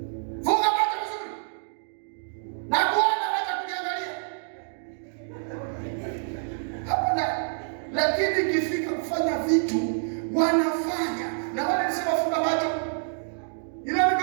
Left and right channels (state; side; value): silent; left; digital silence